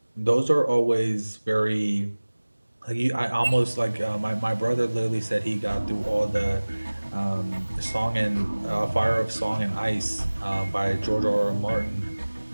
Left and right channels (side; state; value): both; inverted; correlation -1.00